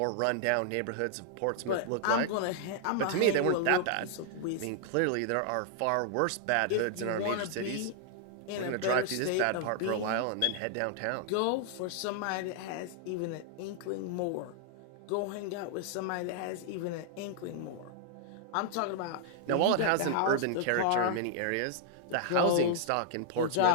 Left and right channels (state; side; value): different; both; correlation -0.01